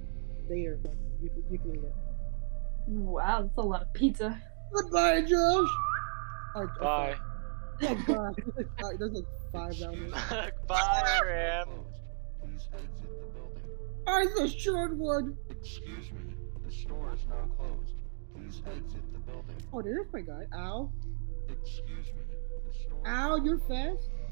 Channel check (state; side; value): silent; left; 55 dB below the other